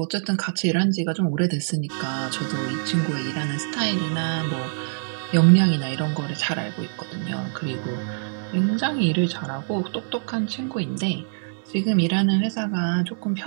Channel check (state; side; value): silent; left; 62 dB below the other